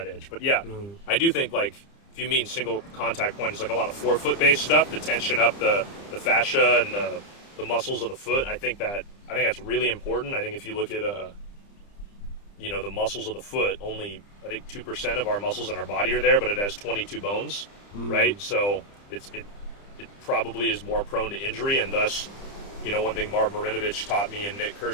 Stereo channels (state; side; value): late; right; 30 ms